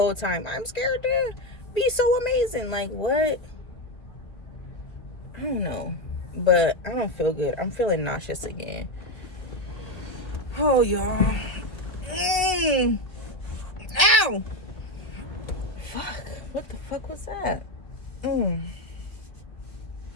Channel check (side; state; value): right; late; 1.8 ms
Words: time, I'm scared to be so amazing. Like, what? I don't know. But I don't feel good. I'm feeling nauseous again. Oh, y'all. Ow! Fuck. What the fuck was that?